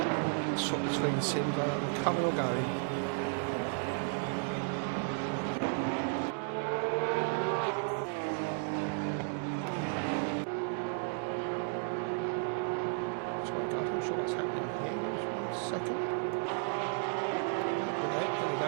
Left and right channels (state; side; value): silent; left; 55 dB below the other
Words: we swap between sims, coming or going. I'm sure what's happening here. Just 1 second. There we go.